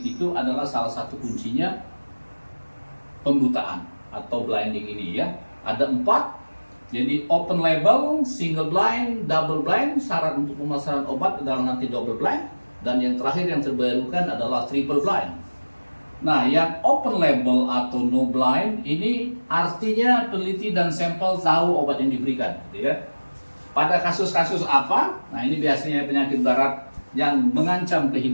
Itu adalah salah satu kuncinya pembutaan atau blinding ini ya. Ada 4. Jadi open label, single blind, double blind. Syarat untuk pemasaran obat adalah nanti double blind. Dan yang terakhir yang terbarukan adalah triple blind. Nah, yang open label atau no blind ini artinya peneliti dan sampel tahu obat yang diberikan, gitu ya. Pada kasus-kasus apa? Nah, ini biasanya penyakit darat yang mengancam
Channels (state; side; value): inverted; both; correlation -1.00